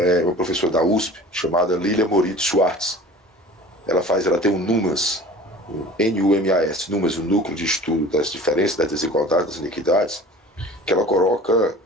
uma professora da USP, chamada Lilia Moritz Schwartz. Ela tem um NUMAS, números, o Núcleo de Estudo das Diferenças, das Desigualdades, das Iniquidades, que ela coloca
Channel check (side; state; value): both; normal; correlation 0.43